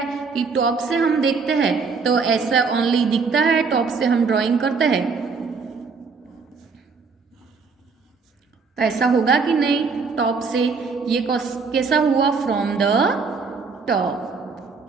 कि टॉप से हम देखते हैं तो ऐसा ओनली दिखता है, टॉप से हम ड्राइंग करते हैं तो ऐसा होगा कि नहीं, टॉप से ये कैसा हुआ, फ्रॉम द टॉप,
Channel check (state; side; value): quieter; left; 4.9 dB